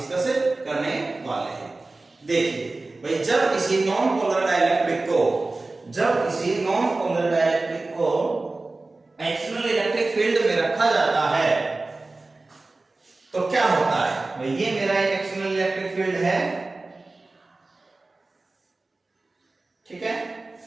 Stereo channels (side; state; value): left; quieter; 3.3 dB